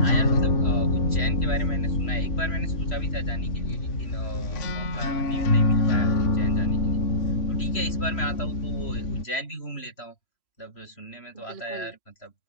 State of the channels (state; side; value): late; right; 3.0 ms